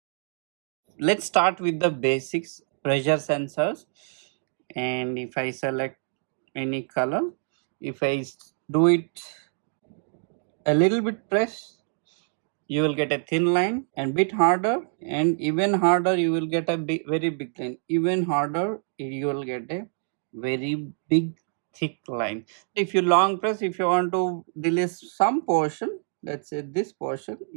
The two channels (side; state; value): left; silent; digital silence